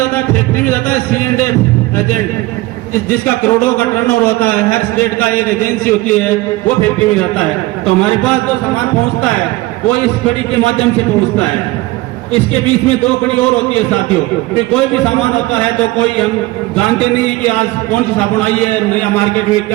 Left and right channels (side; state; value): left; quieter; 19.7 dB